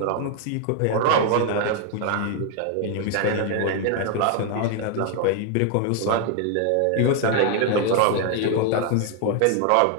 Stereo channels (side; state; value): both; different; correlation 0.00